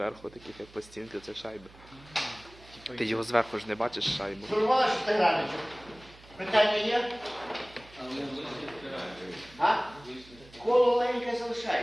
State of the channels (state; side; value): noise; right; hum, 23 dB below the sound